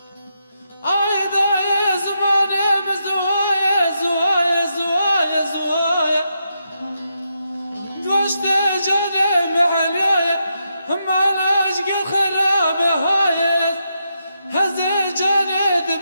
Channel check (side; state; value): both; inverted; correlation -0.82